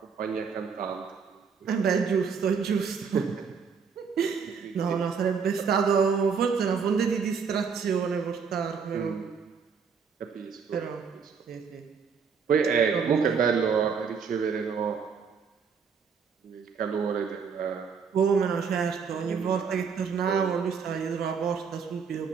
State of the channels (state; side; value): quieter; left; 6.1 dB